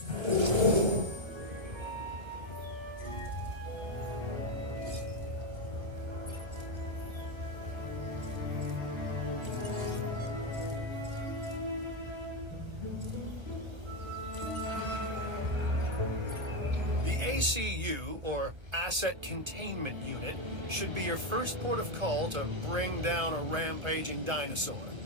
ACU, or Asset Containment Unit, should be your first port of call to bring down a rampaging dinosaur.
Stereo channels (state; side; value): late; left; 1.2 ms